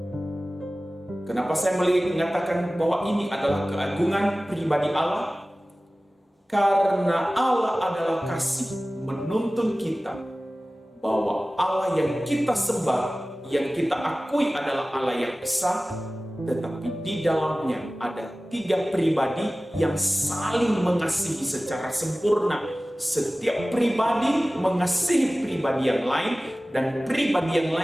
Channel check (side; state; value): both; normal; correlation 0.97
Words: Kenapa saya mengatakan bahwa ini adalah keagungan pribadi Allah? Karena Allah adalah kasih, menuntun kita bahwa Allah yang kita sembah, yang kita akui adalah Allah yang esa, tetapi di dalamnya ada 3 pribadi yang saling mengasihi secara sempurna. Setiap pribadi mengasihi pribadi yang lain, dan pribadi yang